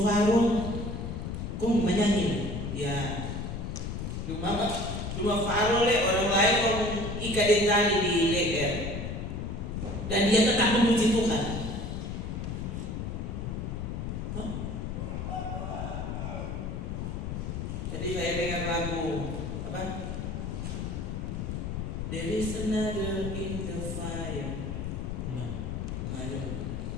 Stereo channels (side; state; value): left; noise; rumble, 4 dB below the sound